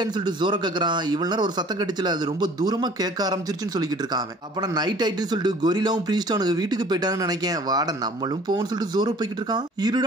சொல்லிட்டு ஜோரோ கேக்குறான். இவ்வளவு நேரம் ஒரு சத்தம் கடிச்சல, அது ரொம்ப தூரமா கேட்க ஆரம்பிச்சிருச்சுன்னு சொல்லிக்கிட்டு இருக்கான். அப்ப நைட் ஆயிட்டுன்னு சொல்லிட்டு கொரிலாவும் பிரீஸ்டும் அவனுக்கு வீட்டுக்கு போயிட்டான்னு நினைக்கேன். வாட நம்மளும் போன்னு சொல்லிட்டு ஜோரோ போய்கிட்டு இருக்கான்.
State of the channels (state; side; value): normal; both; correlation 0.50